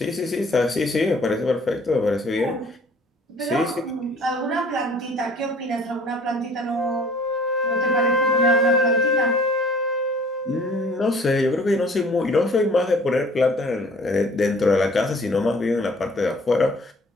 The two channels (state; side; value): normal; both; correlation 0.53